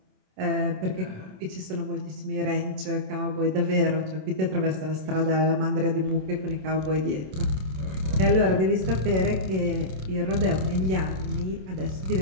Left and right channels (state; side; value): late; left; 27 ms